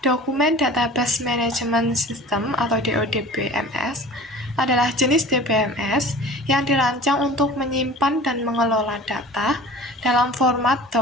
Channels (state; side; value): normal; both; correlation 0.41